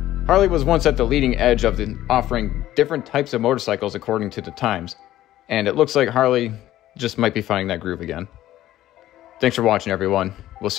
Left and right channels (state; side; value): quieter; right; 14.0 dB